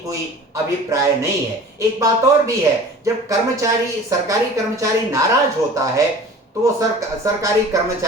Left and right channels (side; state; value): both; normal; correlation 0.42